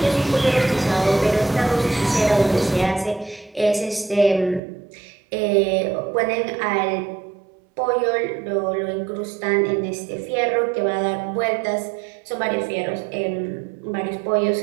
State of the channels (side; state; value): left; drops out; at 4.6 s